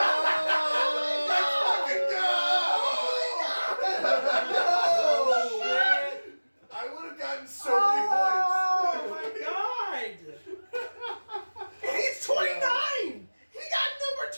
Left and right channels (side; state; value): both; inverted; correlation -1.00